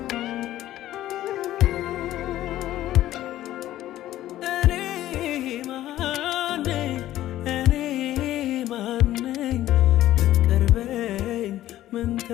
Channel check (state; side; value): quieter; right; 13.9 dB